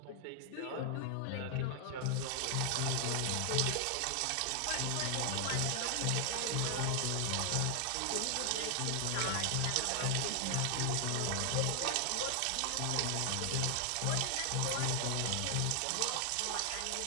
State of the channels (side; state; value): both; different; correlation 0.00